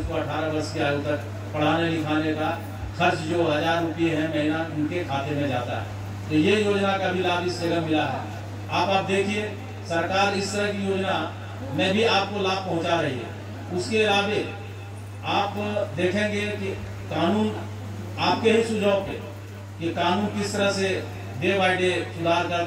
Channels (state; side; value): identical; both; correlation 1.00